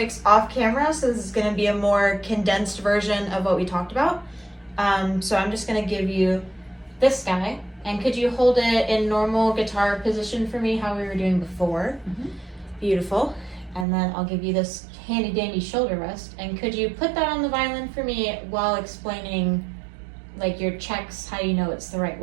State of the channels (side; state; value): left; drops out; at 13.9 s